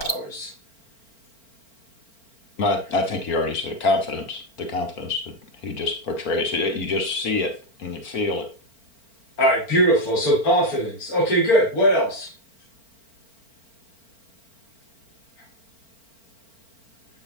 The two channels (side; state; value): right; late; 4.4 ms